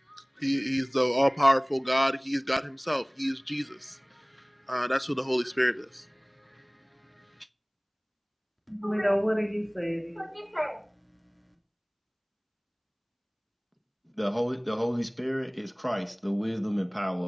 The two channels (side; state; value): both; identical; correlation 1.00